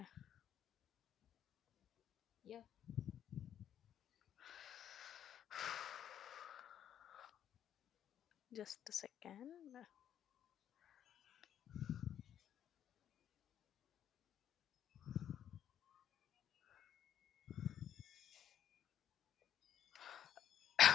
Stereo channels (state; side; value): quieter; right; 10.0 dB